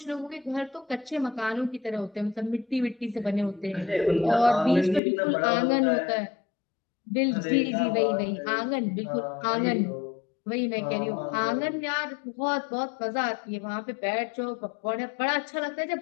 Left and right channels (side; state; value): right; drops out; at 5.0 s